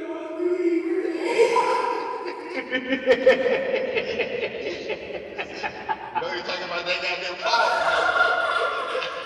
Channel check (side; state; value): both; identical; correlation 1.00